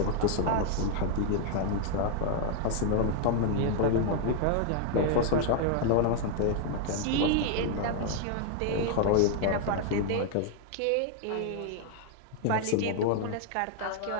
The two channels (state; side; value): different; both; correlation 0.00